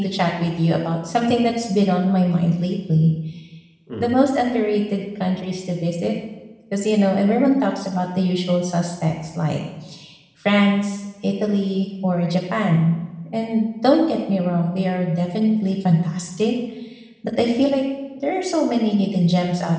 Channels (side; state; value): both; identical; correlation 1.00